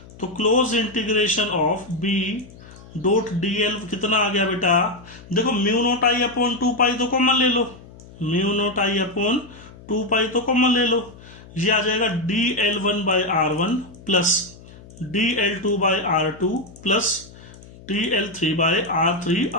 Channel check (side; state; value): left; noise; hum, 20 dB below the sound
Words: तो क्लोज इंटीग्रेशन ऑफ B.dl कितना आ गया बेटा, देखो μ0I/2π तो कॉमन ले लो, μ0I/2π तो कॉमन ले लो, ये आ जाएगा DL1/r1 plus DL2/r2 plus DL3/r3